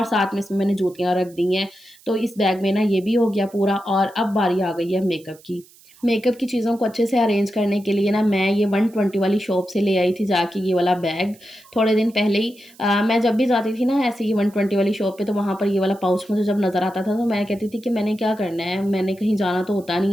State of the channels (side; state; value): right; noise; hiss, 26 dB below the sound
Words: साथ में इसमें मैंने जूतियाँ रख दी हैं। तो इस बैग में ना ये भी हो गया पूरा और अब बारी आ गई है मेकअप की। मेकअप की चीज़ों को अच्छे से अरेंज करने के लिए ना मैं ये 120 वाली शॉप से ले आई थी जाके ये वाला बैग, थोड़े दिन पहले ही। मैं जब भी जाती थी ना ऐसे ही 120 वाली शॉप पे, तो वहाँ पर ये वाला पाउच मुझे जब नज़र आता था तो मैं कहती थी कि मैंने क्या करना है, मैंने कहीं जाना तो होता